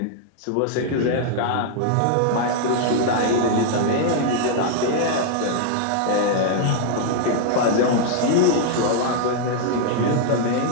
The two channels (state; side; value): different; both; correlation -0.01